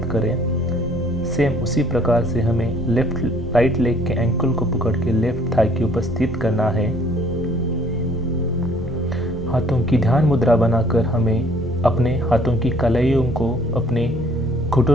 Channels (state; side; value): normal; both; correlation 0.58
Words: करें। सेम उसी प्रकार से हमें राइट लेग के एंकल को पकड़ के लेफ्ट थाई के ऊपर स्थित करना है। हाथों की ध्यान मुद्रा बनाकर हमें अपने हाथों की कलाइयों को अपने